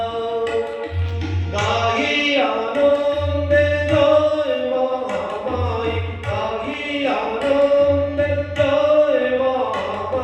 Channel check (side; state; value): both; identical; correlation 1.00